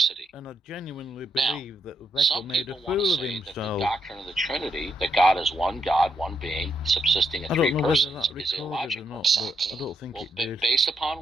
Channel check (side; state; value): both; normal; correlation 0.78